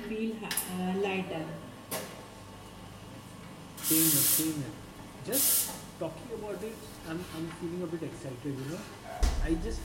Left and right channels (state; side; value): identical; both; correlation 1.00